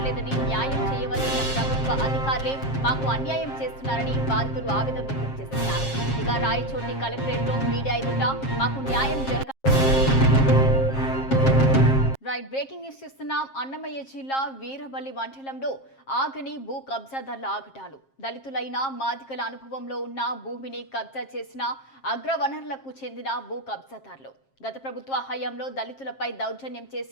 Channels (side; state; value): right; late; 7.5 ms